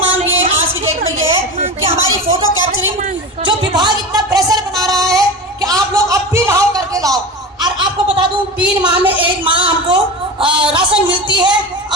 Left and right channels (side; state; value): both; normal; correlation 0.27